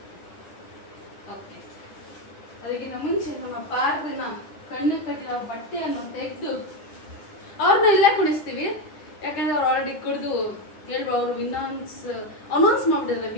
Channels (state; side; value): late; right; 9.9 ms